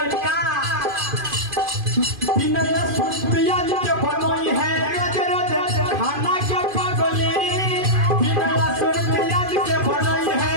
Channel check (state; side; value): late; left; 2.5 ms